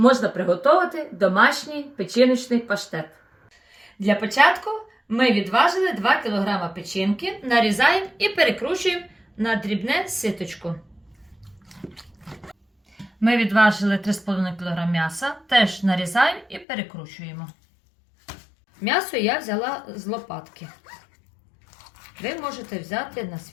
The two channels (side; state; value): right; drops out; at 16.7 s